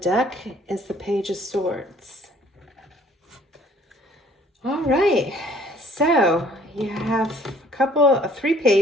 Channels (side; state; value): both; normal; correlation 0.57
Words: is the Page of Swords. All right, so you have 3